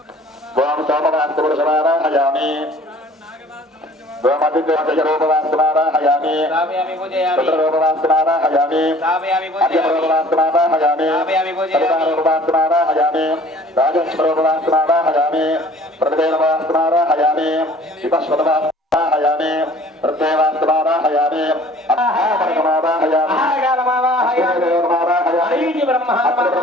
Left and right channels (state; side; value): normal; both; correlation 0.50